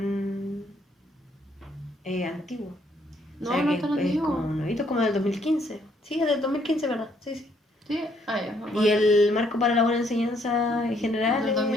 antiguo. No, O sea, no que es tan es antiguo. como nuevito, como del 2015. Sí, es del 2015, ¿verdad? Sí, sí. Sí, ya. Y el marco para la buena enseñanza en general Del es del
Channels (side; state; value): both; normal; correlation 0.69